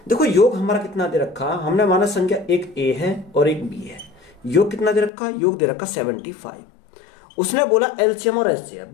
देखो योग हमारा कितना दे रखा? हमने माना संख्या एक a है और एक b है। योग कितना दे रखा? योग दे रखा 75। उसने बोला एलसीएम और एचसीएफ।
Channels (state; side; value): drops out; right; at 5.1 s